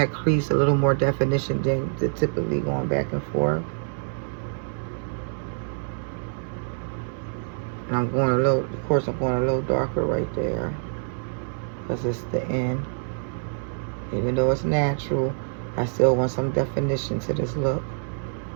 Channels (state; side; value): silent; left; digital silence